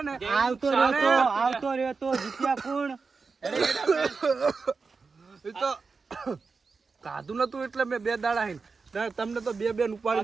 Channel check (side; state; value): left; quieter; 4.6 dB